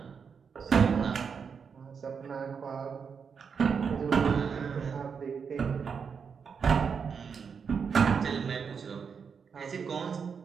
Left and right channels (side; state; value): left; quieter; 6.2 dB